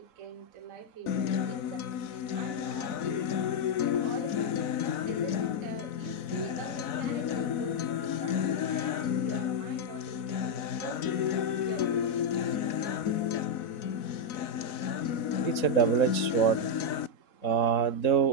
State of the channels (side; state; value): right; late; 4.0 ms